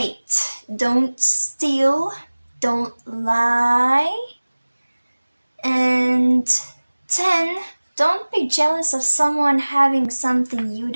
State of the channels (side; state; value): both; inverted; correlation -1.00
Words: Don't steal, don't lie. And 10. Don't be jealous of someone having something you